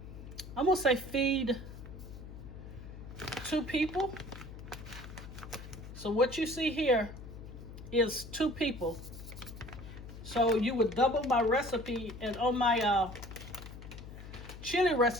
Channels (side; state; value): left; noise; hum, 13 dB below the sound